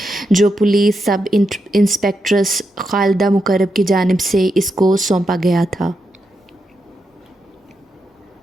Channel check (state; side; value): normal; both; correlation 0.85